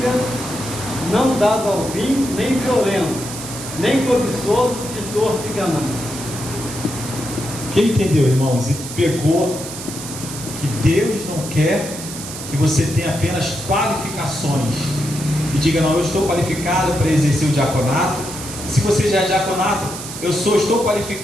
não dado ao vinho, nem violento, nem cobiçoso, titor de ganância. Quem entendeu, irmãos, e pegou que Deus não quer que você tenha apenas qualificações e diga: não, eu estou qualificado para exercer o diaconato. Se você já é diaconato, estou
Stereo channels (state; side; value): noise; right; hiss, 10 dB below the sound